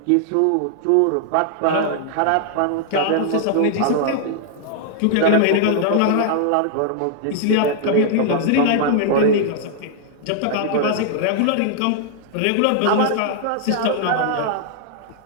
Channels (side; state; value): both; different; correlation -0.01